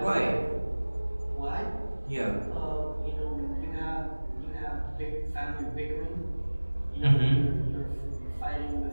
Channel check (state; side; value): inverted; both; correlation -1.00